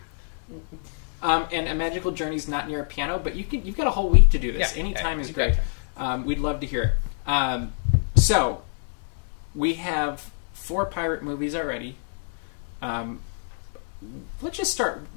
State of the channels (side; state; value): right; silent; 61 dB below the other